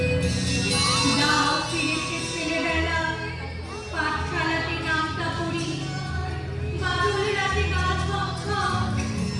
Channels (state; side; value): identical; both; correlation 1.00